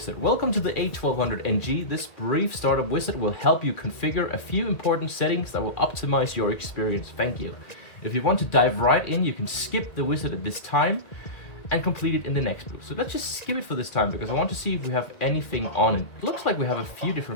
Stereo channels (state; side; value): late; right; 1.9 ms